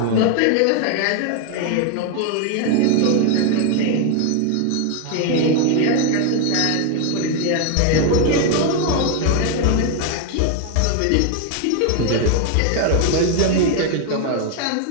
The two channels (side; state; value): both; different; correlation 0.01